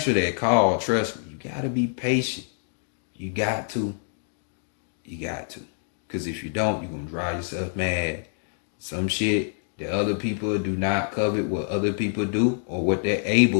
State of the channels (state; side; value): silent; right; digital silence